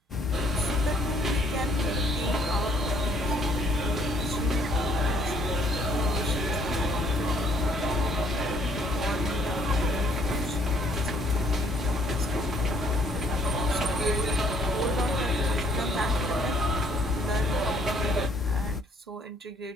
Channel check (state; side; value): normal; both; correlation 0.64